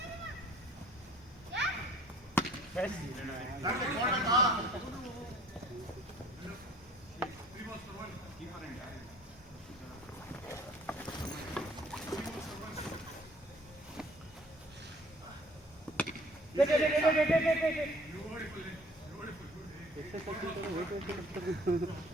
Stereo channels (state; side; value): normal; both; correlation 0.53